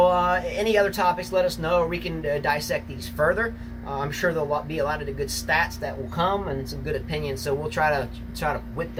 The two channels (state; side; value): identical; both; correlation 1.00